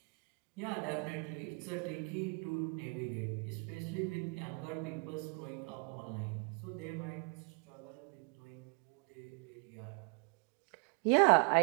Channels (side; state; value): left; quieter; 34.6 dB